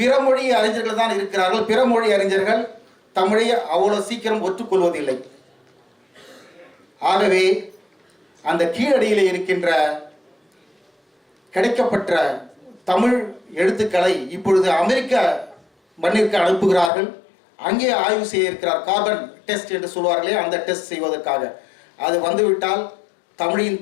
மொழி அறிஞர்கள் தான் இருக்கிறார்கள். பிற மொழி அறிஞர்கள் தமிழை அவ்வளவு சீக்கிரம் ஒற்றுக்கொள்வதில்லை. ஆகவே அந்த கீழடியில் இருக்கின்ற கிடைக்கப்பட்ட தமிழ் எழுத்துக்களை இப்பொழுது அமெரிக்க மண்ணிற்கு அனுப்புகிறார்கள். அங்கே ஆய்வு செய்ய இருக்கிறார். கார்பன் டெஸ்ட் என்று சொல்வார்களே, அந்த டெஸ்ட் செய்வதற்காக. அது வந்துவிட்டால் தமிழின்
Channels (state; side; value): drops out; right; at 16.9 s